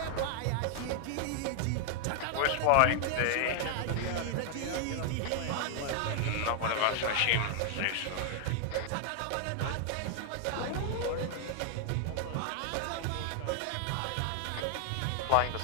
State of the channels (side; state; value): both; different; correlation 0.00